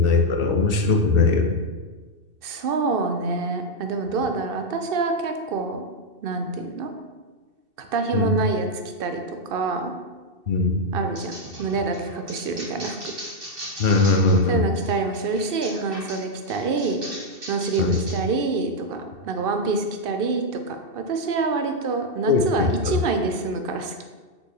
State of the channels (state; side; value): late; left; 2.7 ms